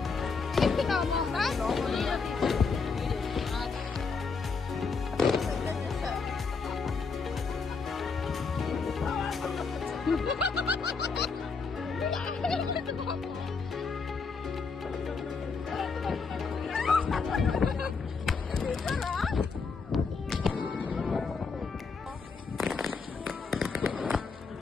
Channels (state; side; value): quieter; right; 4.8 dB